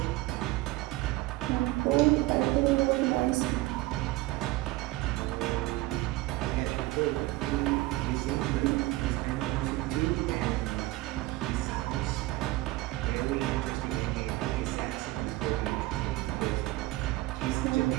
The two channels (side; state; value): left; quieter; 18.8 dB